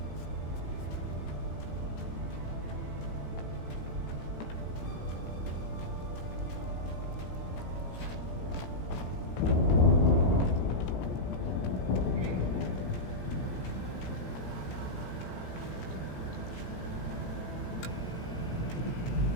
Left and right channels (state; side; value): late; right; 17 ms